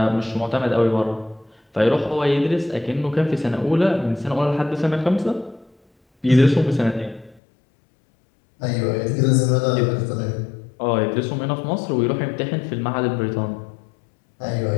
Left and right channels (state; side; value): drops out; right; at 7.4 s